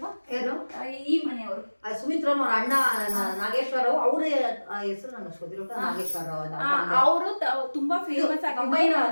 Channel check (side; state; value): both; inverted; correlation -1.00